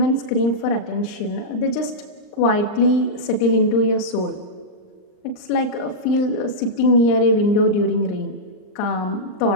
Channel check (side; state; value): right; late; 39 ms